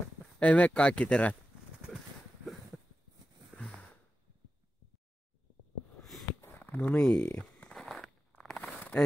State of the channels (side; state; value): both; normal; correlation 0.92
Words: Ei mene kaikki terät. No niin.